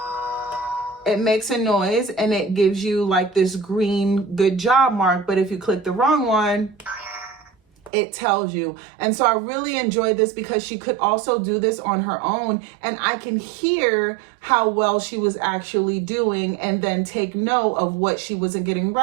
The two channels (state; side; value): drops out; left; at 7.9 s